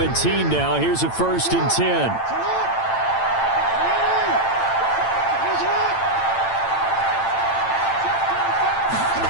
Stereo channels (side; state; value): right; late; 8.9 ms